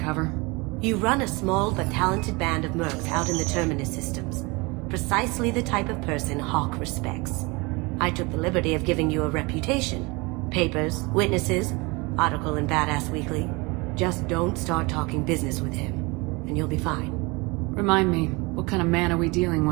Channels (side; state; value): left; quieter; 26.1 dB